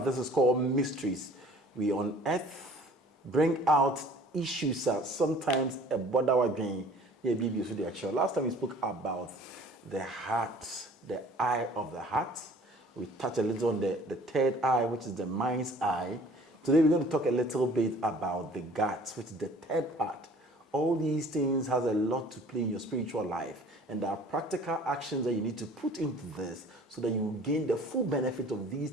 is called Mysteries. We unearth, bring out issues that sometimes a border again. Last time we spoke about the heart, the eye of the heart. We touched a little on the third eye, which is the mind's eye. Today we're going to talk a little bit about the guts, which is the third part. All these things has a lot to play in your spiritual life, and there are practical actions that you need to put into this so that you gain the full benefit of these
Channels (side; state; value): both; normal; correlation 0.50